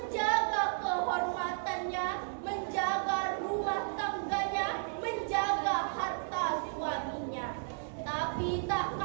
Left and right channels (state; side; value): silent; left; 55 dB below the other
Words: kehormatannya, menjaga rumah tangganya, menjaga harta suaminya. Tapi tak